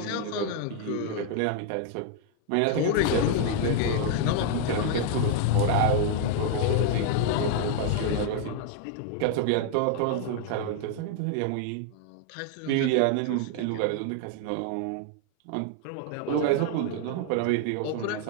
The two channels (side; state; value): both; different; correlation 0.00